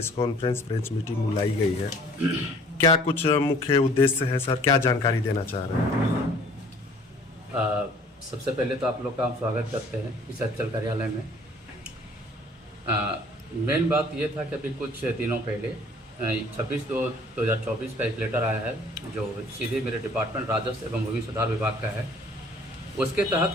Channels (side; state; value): both; normal; correlation 0.54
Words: कॉन्फ्रेंस प्रेस मीटिंग बुलाई गई है, क्या कुछ मुख्य उद्देश्य है सर? क्या जानकारी देना चाह रहे हैं? सबसे पहले तो आप लोग का हम स्वागत करते हैं इस अंचल कार्यालय में। मेन बात ये था कि अभी कुछ दिनों पहले 26/2/2024 का एक लेटर आया है जो सीधे मेरे डिपार्टमेंट राजस्व एवं भूमि सुधार विभाग का है। उसके